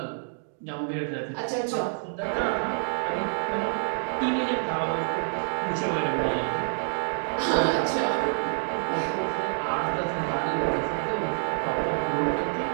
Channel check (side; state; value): left; silent; digital silence